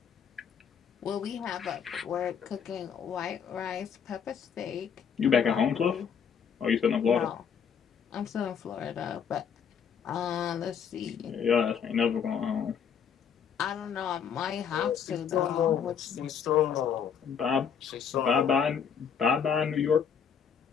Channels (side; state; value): right; quieter; 7.3 dB